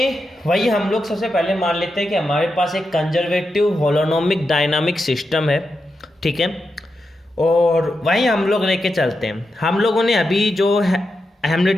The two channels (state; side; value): normal; both; correlation 0.87